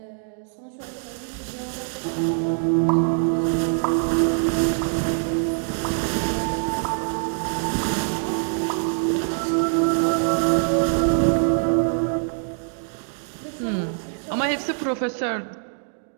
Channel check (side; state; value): left; silent; digital silence